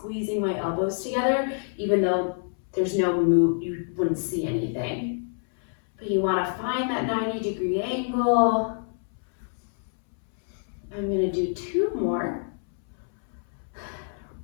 my elbows together, even though there's no move, you wouldn't see anything. But you want to find that 90-degree angle. I'm going to do 2 more.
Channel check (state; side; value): silent; right; 60 dB below the other